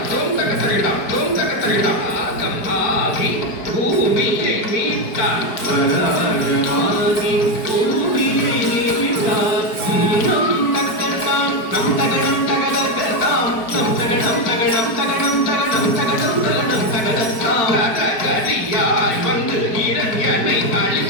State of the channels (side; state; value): right; late; 4.8 ms